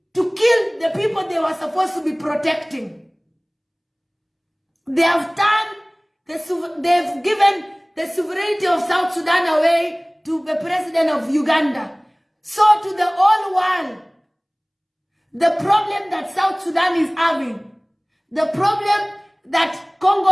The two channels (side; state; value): both; identical; correlation 1.00